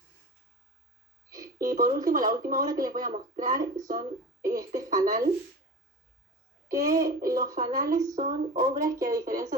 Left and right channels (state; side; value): normal; both; correlation 0.32